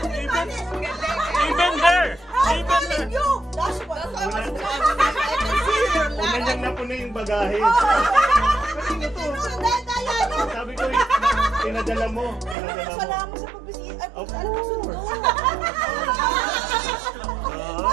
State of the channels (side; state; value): left; drops out; at 12.6 s